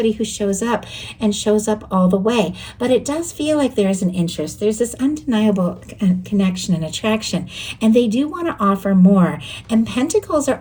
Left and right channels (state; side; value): identical; both; correlation 1.00